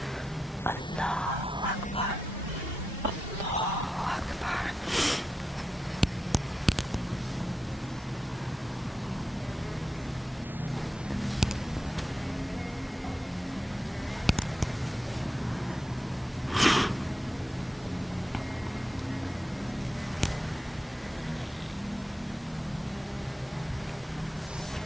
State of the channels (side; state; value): both; normal; correlation 0.88